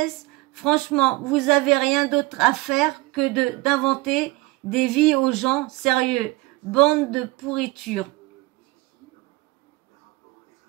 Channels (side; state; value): left; quieter; 21.4 dB